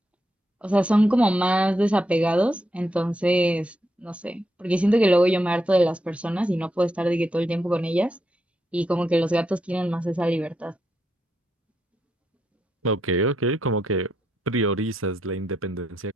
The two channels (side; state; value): both; normal; correlation 0.81